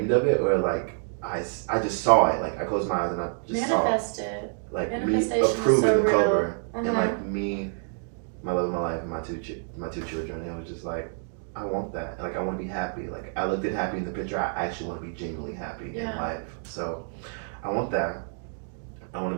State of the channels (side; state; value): left; silent; 60 dB below the other